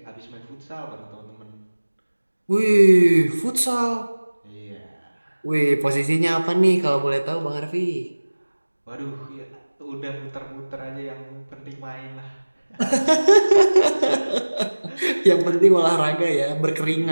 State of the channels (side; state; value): both; inverted; correlation -1.00